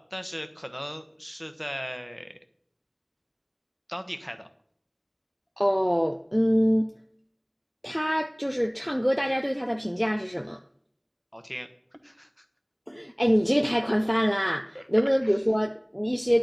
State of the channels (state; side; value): identical; both; correlation 1.00